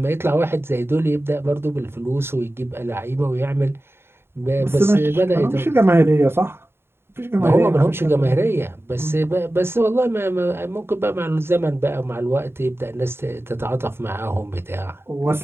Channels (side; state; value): left; late; 0.11 ms